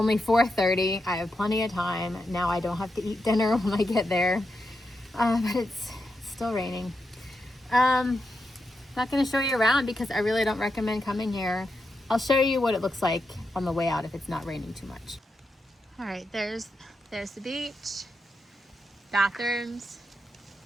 4:30. I have plenty of time. Now I don't have to eat dinner when I get there, but it's still raining. Not going to show you around because I really don't recommend coming here. I'll show you what it looks like on the way out if it's not raining too much. All right, there's the beach, bathrooms,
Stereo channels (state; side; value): normal; both; correlation 0.86